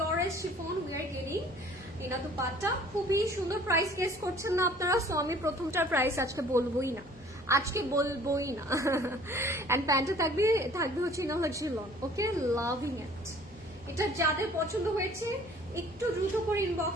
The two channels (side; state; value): both; normal; correlation 0.52